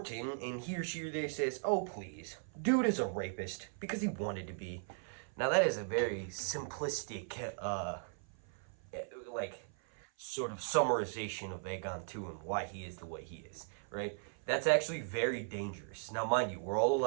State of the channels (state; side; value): silent; left; 52 dB below the other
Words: and he or she or they says, oh please, dude is a rapist because he wanted to be. Now that is a very simplistic like sort of summarization of Aegon II and why he is the way he is, right? That's actually very dangerous. Now mind you, we're all